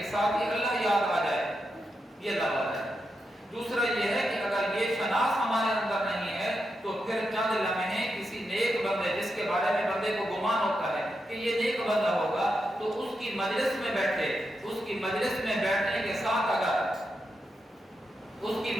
ساتھ ہی اللہ یاد آ جائے، یہ اللہ والا ہے. دوسرا یہ ہے کہ اگر یہ شناخت ہمارے اندر نہیں ہے تو پھر چند لمحے کسی نیک بندے جس کے بارے میں بندے کو گمان ہوتا ہے کہ یہ نیک بندہ ہوگا، تو اس کی مجلس میں بیٹھے، اس کی مجلس میں بیٹھنے کے ساتھ اگر اس کی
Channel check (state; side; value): normal; both; correlation 0.86